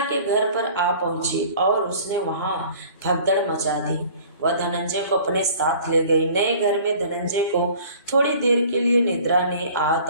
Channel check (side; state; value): both; inverted; correlation -0.49